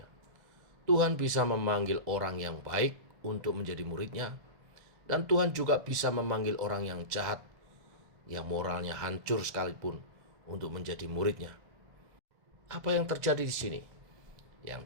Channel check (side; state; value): left; late; 2.0 ms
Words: Tuhan bisa memanggil orang yang baik untuk menjadi muridnya, dan Tuhan juga bisa memanggil orang yang jahat, yang moralnya hancur sekalipun, untuk menjadi muridnya. Apa yang terjadi di sini? Yang